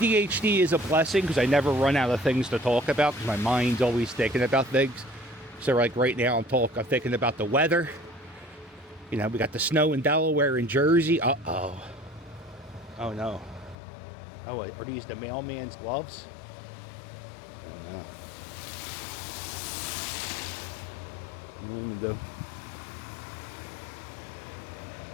is a blessing, because I never run out of things to talk about, because my mind's always thinking about things. So like right now I'm thinking about the weather. You know, we got the snow in Delaware and Jersey. Uh-oh. Oh no. Oh, wait, are these the mailman's gloves? I don't know.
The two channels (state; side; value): drops out; right; at 13.8 s